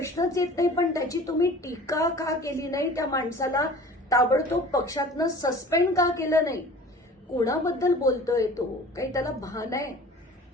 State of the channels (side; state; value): both; normal; correlation 0.44